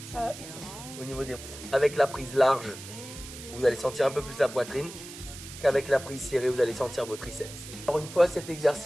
Ici. Au niveau des... Avec la prise large, vous allez sentir un peu plus la poitrine qu'avec la prise serrée, vous allez sentir vos triceps. Alors une fois cet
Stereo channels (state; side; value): noise; right; hiss, 13 dB below the sound